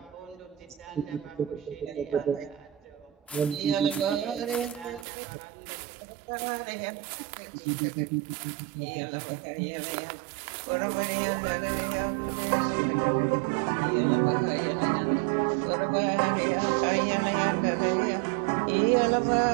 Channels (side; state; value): left; drops out; at 5.1 s